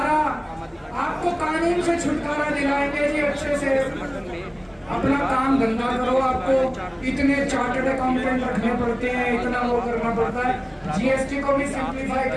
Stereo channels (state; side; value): identical; both; correlation 1.00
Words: आपको कानून से छुटकारा दिलाएंगे जी। अच्छे से अपना काम धंधा करो। आपको इतने चार्टर्ड अकाउंटेंट रखने पड़ते हैं, इतना वो करना पड़ता है। GST को भी सिंप्लीफाई